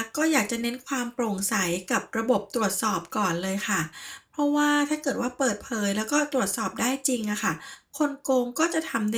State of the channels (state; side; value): identical; both; correlation 1.00